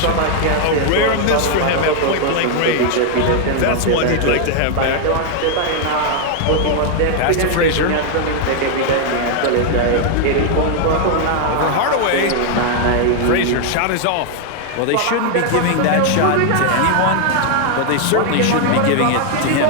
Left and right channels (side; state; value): both; different; correlation 0.00